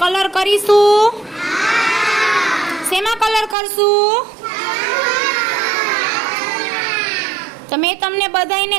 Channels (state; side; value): drops out; left; at 3.6 s